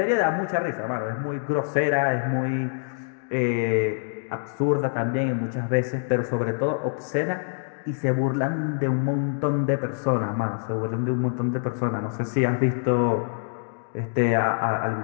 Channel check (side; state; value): right; silent; digital silence